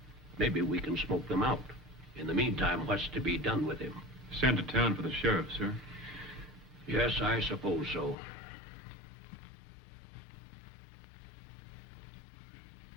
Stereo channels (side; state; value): right; drops out; at 8.2 s